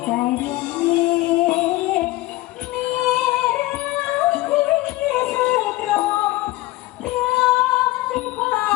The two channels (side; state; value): right; quieter; 18.6 dB